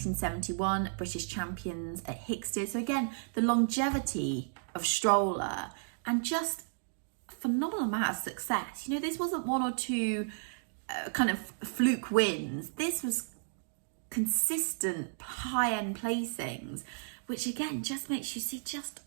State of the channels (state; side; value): silent; left; digital silence